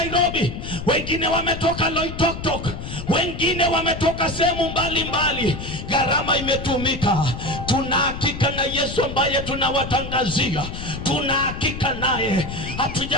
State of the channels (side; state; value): left; noise; rumble, 8 dB below the sound